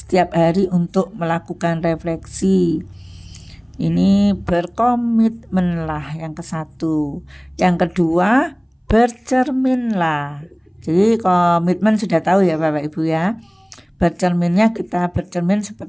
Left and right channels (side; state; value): both; identical; correlation 1.00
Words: hari untuk melakukan refleksi. Ini berkomitmenlah yang ke-1. Yang kedua, bercerminlah. Jadi komitmen sudah tahu ya Bapak Ibu ya. Bercerminnya kita bercermin